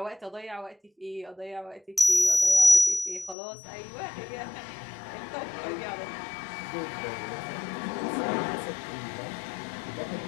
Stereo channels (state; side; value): drops out; right; at 3.4 s